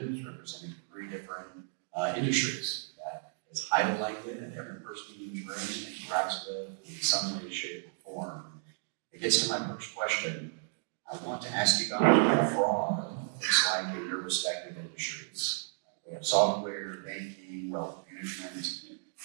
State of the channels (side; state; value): left; silent; digital silence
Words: representing 3 different industries that is highly likely that every person in this room interacts with in some way, shape, or form. It gets to my first question. I want to ask you guys what fraud looks like in your respective industries. We have software, banking, wealth management.